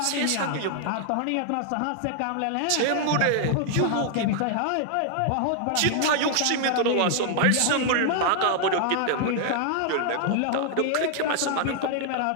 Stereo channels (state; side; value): different; both; correlation 0.00